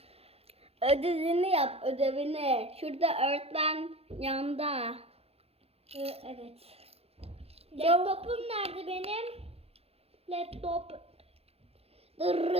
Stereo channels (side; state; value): left; late; 0.29 ms